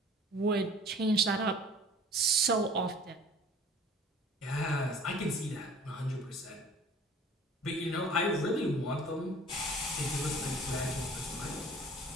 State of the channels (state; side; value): normal; both; correlation 0.47